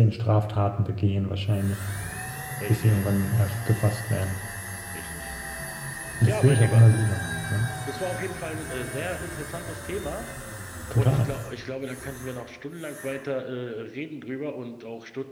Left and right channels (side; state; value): both; identical; correlation 1.00